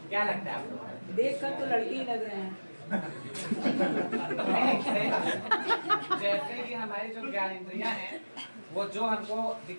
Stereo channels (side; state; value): both; inverted; correlation -1.00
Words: क्या लगता है आपको? देख कर तो लड़के ही लग रहे हैं। जैसे कि हमारी जो ज्ञानेंद्रियाँ हैं वो जो हमको